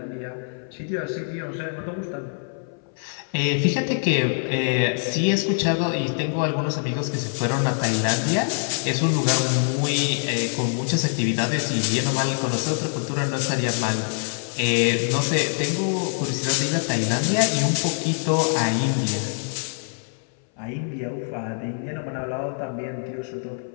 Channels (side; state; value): right; silent; 60 dB below the other